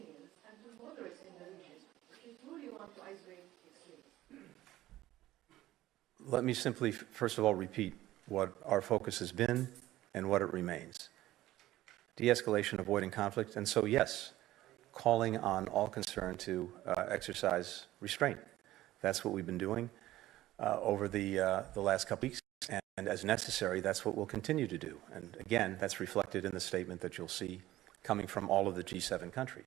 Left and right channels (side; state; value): left; quieter; 15.5 dB